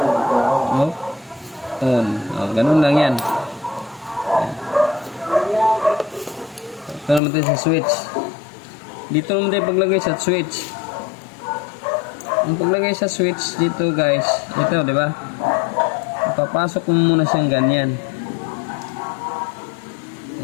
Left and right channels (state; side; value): drops out; right; at 7.2 s